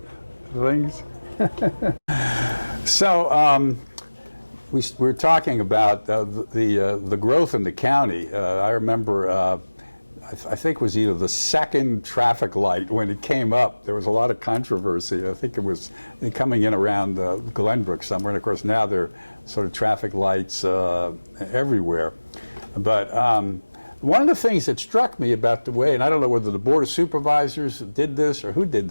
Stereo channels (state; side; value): inverted; both; correlation -1.00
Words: things. So we're talking about the growth in the county. I remember, I think it was either the second traffic light when it came up. There was a lot of controversy. I think it was coming in around Glenbrook somewhere, and of course now there are sort of traffic lights everywhere. But one of the things that struck me about the way, and I don't know whether the Board of Supervisors did this or who did